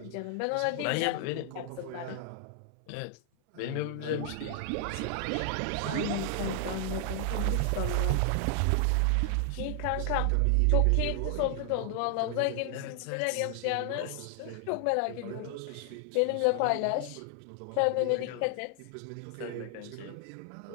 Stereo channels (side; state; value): both; different; correlation 0.00